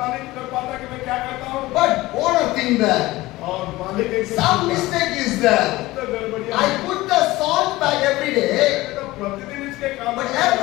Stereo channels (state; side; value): quieter; right; 18.7 dB